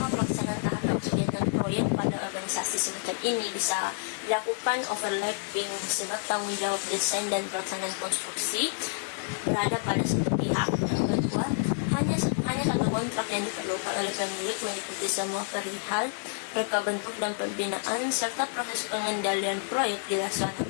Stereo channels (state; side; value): silent; right; digital silence